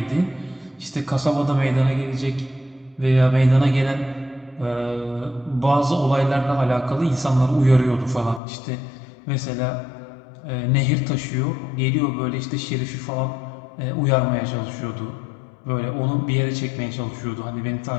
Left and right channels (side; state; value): right; drops out; at 8.4 s